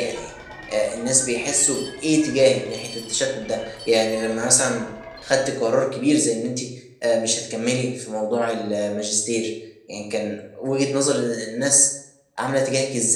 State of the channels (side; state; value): both; identical; correlation 1.00